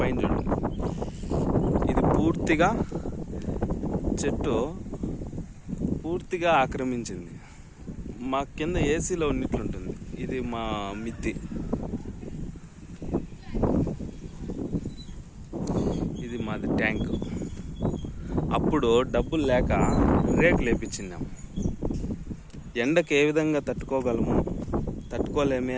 చూడండి. ఇది పూర్తిగా చెట్టు పూర్తిగా ఆక్రమించింది. మా కింద ఏసీలో ఉన్నట్లుంటుంది. ఇది మా మిద్ది. ఇది మాది ట్యాంక్. అప్పుడు డబ్బులు లేక రేకులు వేపించినాం. ఎండకు ఏ విధంగా తట్టుకోలేమే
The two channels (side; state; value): both; identical; correlation 1.00